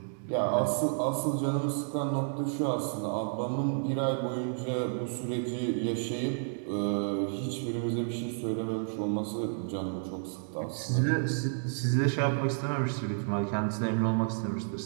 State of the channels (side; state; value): left; silent; digital silence